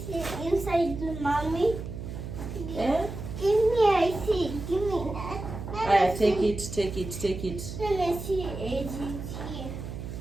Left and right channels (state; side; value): noise; right; hum, 8 dB below the sound